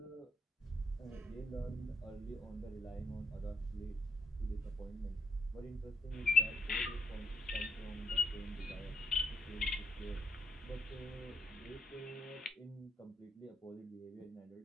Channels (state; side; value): normal; both; correlation 0.77